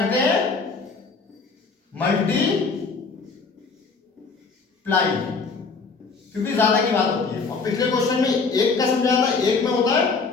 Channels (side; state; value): right; quieter; 4.6 dB